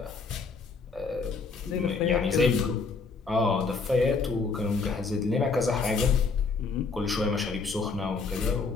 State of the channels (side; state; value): right; quieter; 4.4 dB